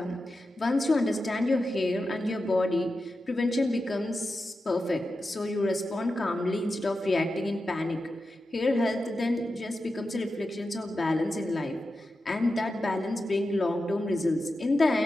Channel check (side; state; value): both; normal; correlation 0.91